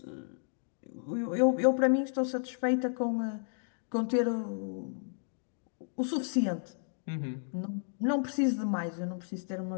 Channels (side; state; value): right; silent; digital silence